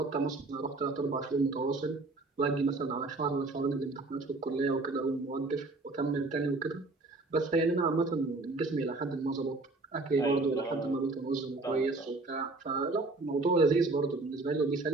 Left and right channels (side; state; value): left; quieter; 3.3 dB